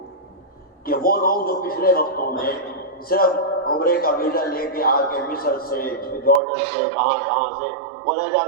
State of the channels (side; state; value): left; drops out; at 6.4 s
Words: کہ وہ لوگ جو پچھلے وقتوں میں صرف عمرے کا ویزا لے کے آ کے مصر سے، جارڈن سے، کہاں سے وہ رہ